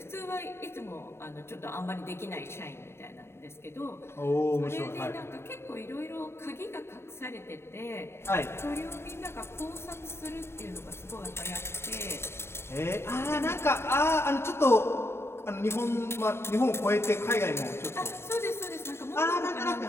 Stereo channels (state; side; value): late; right; 0.12 ms